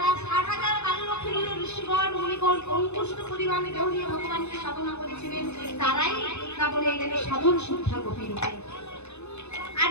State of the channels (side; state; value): right; late; 0.81 ms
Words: 60,000 বাল্যলক্ষ্মী ঋষিগণ মুনিগণ অঙ্কুষ্ট পরিমাণে দেহ নিয়ে ভগবানকে সাধনা করেছিলেন, তারাই তারপরে এলেন সাধন সিদ্ধা গোপী রূপে। আর